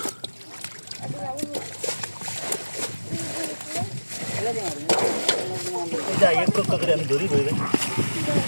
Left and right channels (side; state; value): both; inverted; correlation -1.00